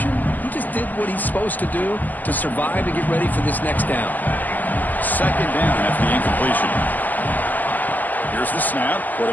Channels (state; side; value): late; right; 0.083 ms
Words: he just did what he's supposed to do to survive and get ready for this next down. 2nd down after the incompletion. Here's the snap.